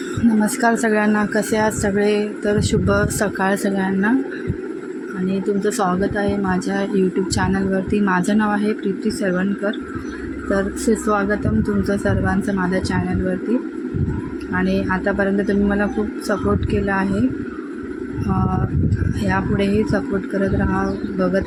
नमस्कार सगळ्यांना, कसे आहात सगळे? तर शुभ सकाळ सगळ्यांना आणि तुमचं स्वागत आहे माझ्या यूट्यूब चॅनलवरती. माझं नाव आहे प्रीती सरवणकर. तर सुस्वागतम तुमचं सर्वांचं माझ्या चॅनलवरती. आणि आतापर्यंत तुम्ही मला खूप सपोर्ट केला आहे. यापुढेही सपोर्ट करत राहा, बघत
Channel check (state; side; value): identical; both; correlation 1.00